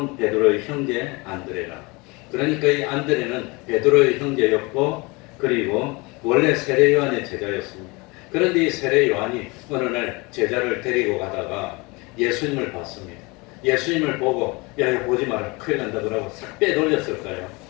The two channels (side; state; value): right; quieter; 26.0 dB